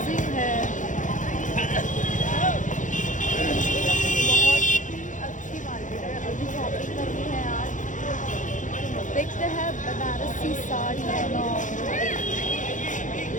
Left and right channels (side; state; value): right; late; 0.37 ms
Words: है, बहुत अच्छी मार्केट है। अभी शॉपिंग करनी है आज। देखते हैं बनारसी साड़ी